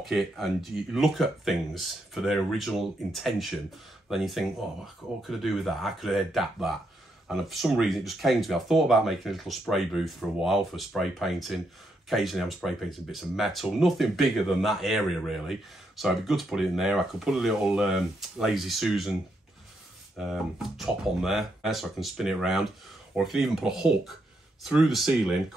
and you look at things for their original intention, then you think, oh, what could I do with that? How could I adapt that? And for some reason, it just came to me. I've thought about making a little spray booth for a while for spray painting. Occasionally, I'm spray painting bits of metal. Nothing bigger than that area, really. So it'd be good to put it in there. I could put a little Lazy Susan top on there so I can spin it around. Or I can even put a hook through the ceiling,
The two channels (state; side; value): normal; both; correlation 0.79